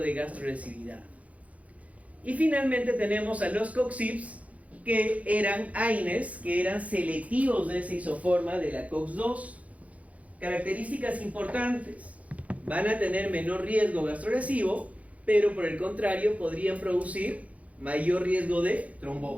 gastrolesividad. Y finalmente tenemos a los COX-IPs, que eran AINES, que eran selectivos de esa isoforma de la COX-2. Características importantes: van a tener menor riesgo gastrolesivo, pero por el contrario podrían producir mayor riesgo de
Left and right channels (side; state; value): left; late; 0.067 ms